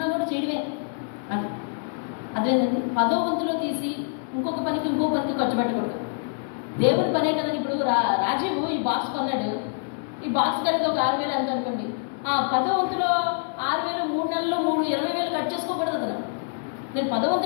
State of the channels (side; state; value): right; silent; 61 dB below the other